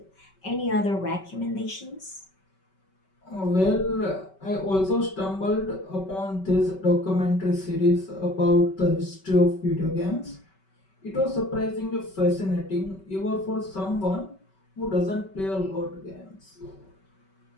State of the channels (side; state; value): right; late; 5.3 ms